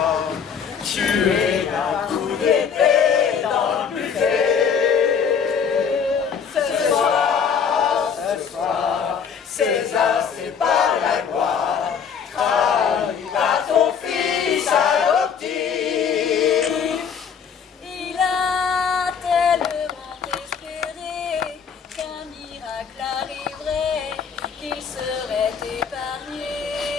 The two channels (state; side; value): quieter; right; 6.9 dB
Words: tué d'un coup d'épée dans le buffet. Ce soir, César c'est pas la gloire, trahi par ton fils adoptif. Il a tellement espéré qu'un miracle arriverait, qu'il serait épargné.